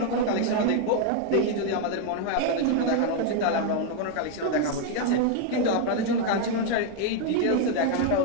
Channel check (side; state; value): both; different; correlation 0.00